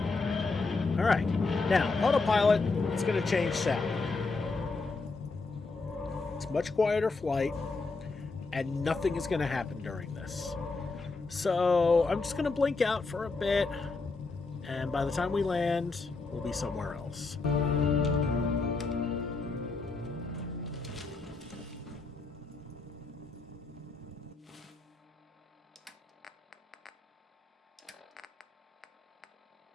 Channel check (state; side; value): quieter; right; 3.9 dB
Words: Alright. Now, autopilot is going to change sound. It's much quieter flight, and nothing is going to happen during this. So, I'm just going to blink out for a bit, and by the time we land, we'll be somewhere else.